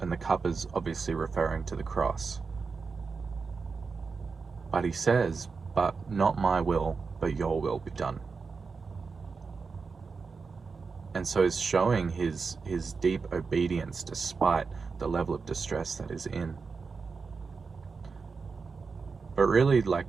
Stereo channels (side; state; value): left; quieter; 4.8 dB